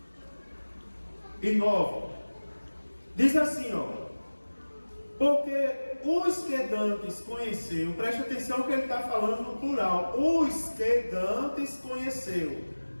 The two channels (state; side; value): inverted; both; correlation -1.00